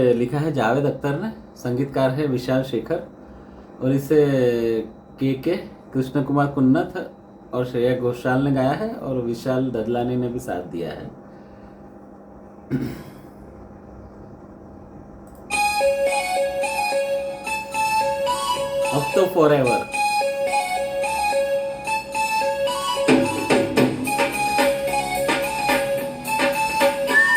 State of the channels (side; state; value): both; identical; correlation 1.00